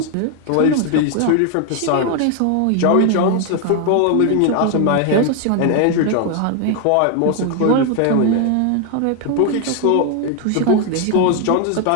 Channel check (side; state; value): both; different; correlation 0.00